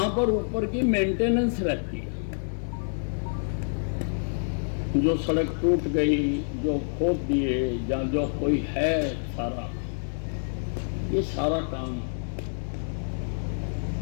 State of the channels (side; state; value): right; silent; digital silence